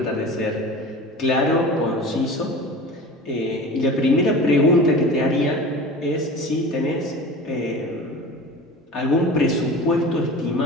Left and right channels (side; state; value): both; normal; correlation 0.36